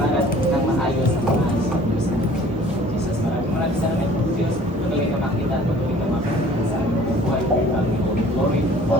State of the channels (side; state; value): both; normal; correlation 0.51